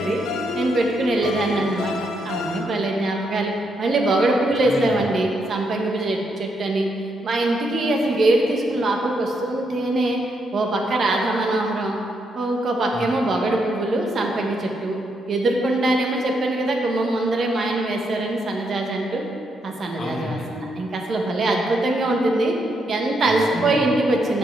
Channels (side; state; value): both; normal; correlation 0.78